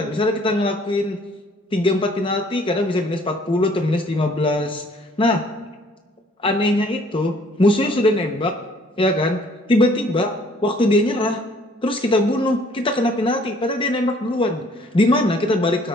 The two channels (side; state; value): both; normal; correlation 0.59